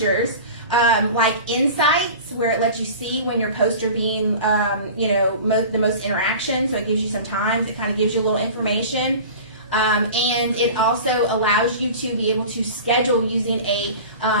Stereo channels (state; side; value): inverted; both; correlation -0.37